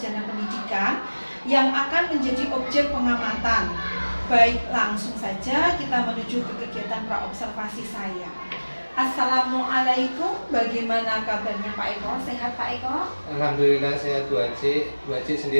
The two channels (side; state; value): both; inverted; correlation -1.00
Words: Pendidikan, yang akan menjadi objek pengamatan. Baik, langsung saja kita menuju ke kegiatan praobservasi saya. Assalamualaikum, bagaimana kabarnya Pak Eko? Sehat Pak Eko? Alhamdulillah sehat Bu Aji. Bu Aji